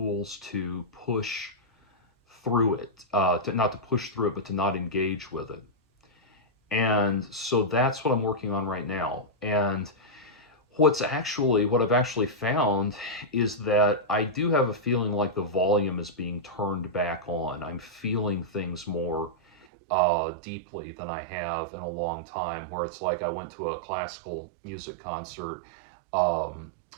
to push through it, not to push through it, but to not engage with it. And so that's what I'm working on right now. And what I've actually found is that I do have a feeling like the volume is being turned back on. I'm feeling things more deeply than I have in a long time, where it's like I went to a classical music concert um,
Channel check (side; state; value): left; drops out; at 19.7 s